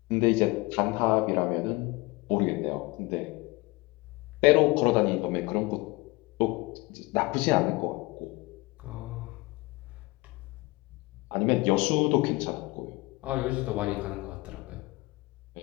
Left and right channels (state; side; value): quieter; right; 23.3 dB